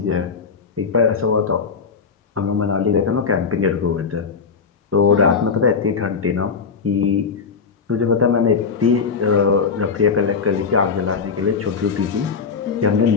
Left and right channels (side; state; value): right; quieter; 5.5 dB